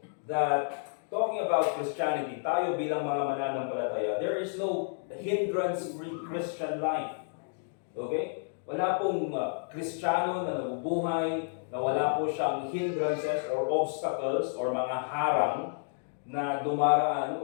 that talking about Christianity, tayo bilang mga mananampalataya, there is no hindrance-free Christian life. Okay? Wala pong Kristiyano na nabubuhay na wala po siyang hindrances or obstacles or mga harang na dumaraan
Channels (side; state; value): right; silent; digital silence